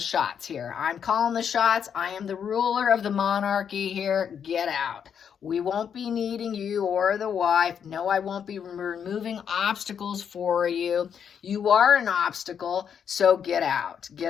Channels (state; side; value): quieter; right; 7.8 dB